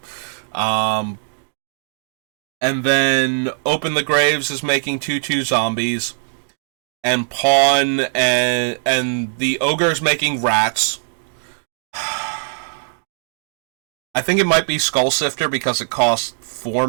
And then Open the Graves is making 2/2 zombies. And Pawn and the Ogre is making rats. I think it might be Skull Sifter because it costs 4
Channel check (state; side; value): silent; left; digital silence